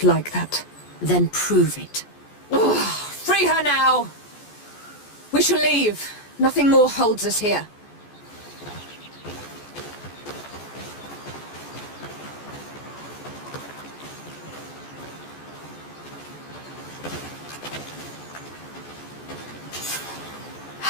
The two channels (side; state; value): right; late; 14 ms